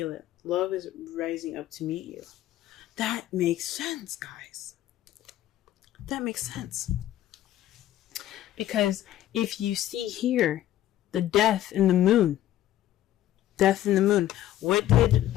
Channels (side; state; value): right; quieter; 13.1 dB